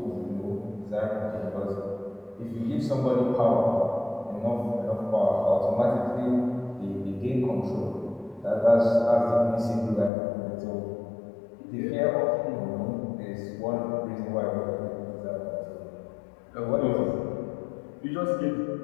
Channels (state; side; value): drops out; right; at 10.1 s